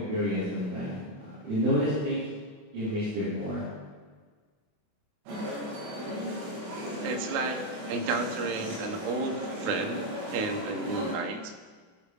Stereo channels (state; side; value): late; left; 28 ms